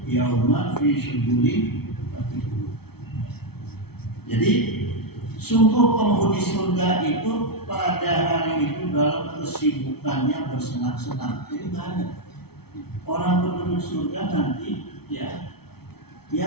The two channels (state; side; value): late; right; 0.96 ms